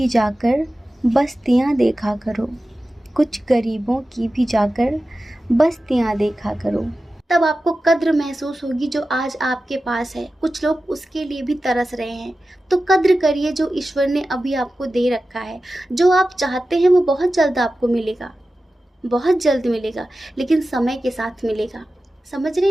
जाकर बस्तियां देखा करो, कुछ गरीबों की भी जाकर बस्तियां देखा करो। तब आपको कद्र महसूस होगी जो आज आपके पास है। कुछ लोग उसके लिए भी तरस रहे हैं, तो कद्र करिए जो ईश्वर ने अभी आपको दे रखा है। जो आप चाहते हैं वो बहुत जल्द आपको मिलेगा, बहुत जल्द मिलेगा, लेकिन समय के साथ मिलेगा। समझ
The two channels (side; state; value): both; normal; correlation 0.94